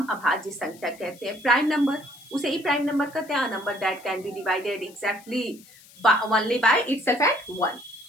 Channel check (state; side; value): noise; left; hiss, 23 dB below the sound